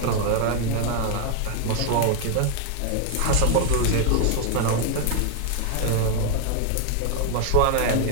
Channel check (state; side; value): different; both; correlation 0.00